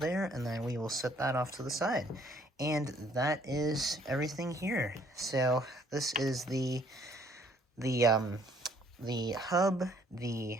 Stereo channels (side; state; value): both; normal; correlation 0.63